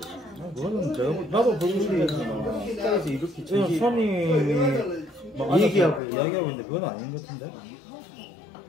그거는 나도 불교 신자지만 국가에서 이렇게 지금 손님이 뭐 얘기하고 이야기하고 있는데 그건 아닌 것 같은데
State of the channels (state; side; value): drops out; right; at 6.0 s